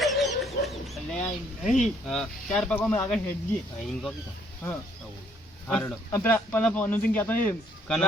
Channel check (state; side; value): normal; both; correlation 0.65